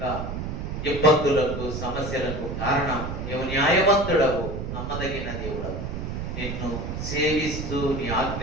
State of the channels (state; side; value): noise; right; rumble, 5 dB below the sound